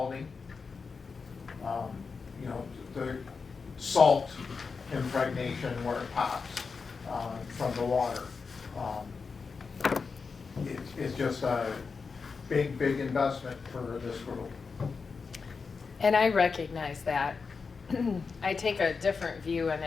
The salt impregnation where it pops from the water. It's just a big investment for this group. And I recognize that. I take a different view in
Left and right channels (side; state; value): right; quieter; 5.0 dB